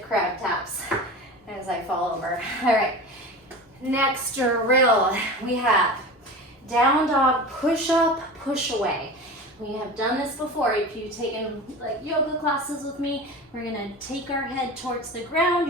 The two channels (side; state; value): both; normal; correlation 0.32